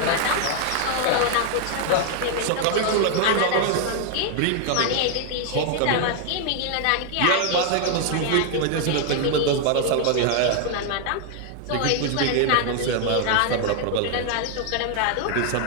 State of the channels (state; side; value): different; both; correlation 0.00